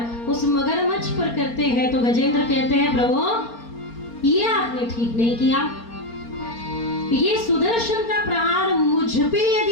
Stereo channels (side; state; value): right; late; 4.3 ms